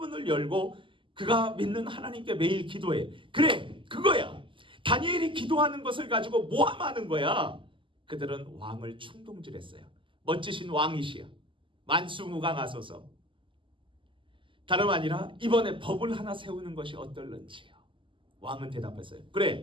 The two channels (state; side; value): late; left; 0.25 ms